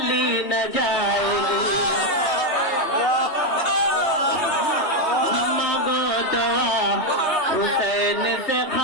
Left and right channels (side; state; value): right; late; 3.2 ms